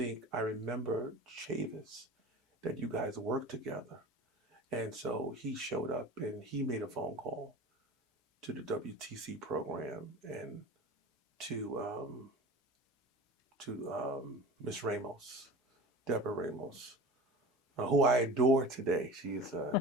I remember Chavis, that you guys worked together. And so he showed up and he made a phone call to the WTC program and to Miss Ramos, Deborah Ramos, who I adore today. She's a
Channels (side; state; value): both; normal; correlation 0.36